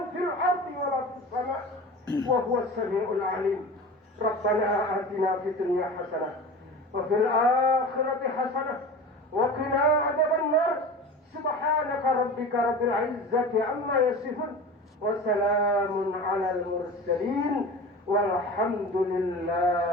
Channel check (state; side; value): normal; both; correlation 0.34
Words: في الأرض ولا في السماء وهو السميع العليم ربنا آتنا في الدنيا حسنة وفي الآخرة حسنة وقنا عذاب النار سبحانك ربك رب العزة عما يصفون وسلام على المرسلين والحمد